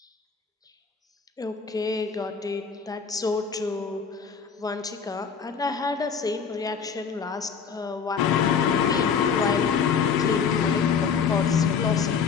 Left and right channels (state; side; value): quieter; right; 6.3 dB